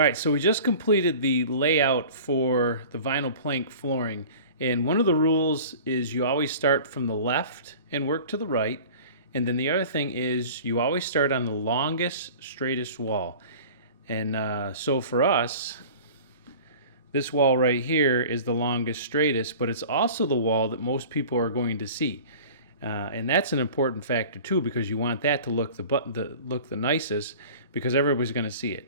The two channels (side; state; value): both; inverted; correlation -0.41